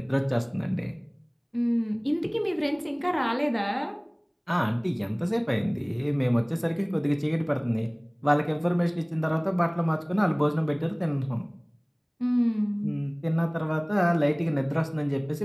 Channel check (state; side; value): identical; both; correlation 1.00